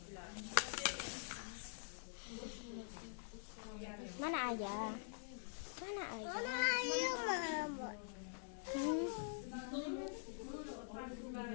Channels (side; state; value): right; silent; digital silence